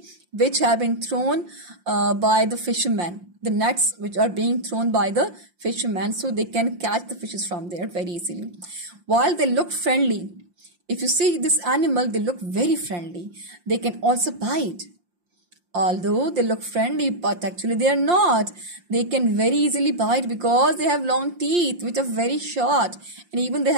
which have been thrown by the fishermen. The nets which are being thrown by the fishermen, so they can catch the fishes from there very easily. While they look friendly, if you see this animal, they look very friendly. They can also bite. Although they look friendly, but actually they are not. They can very easily bite because they have long teeth which are very short, and even they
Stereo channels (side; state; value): left; late; 5.7 ms